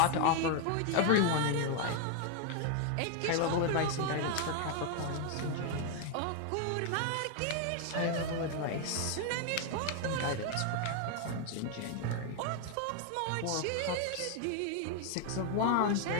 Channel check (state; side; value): different; both; correlation 0.01